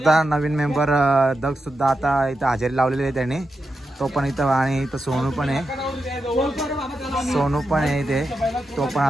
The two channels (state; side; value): normal; both; correlation 0.88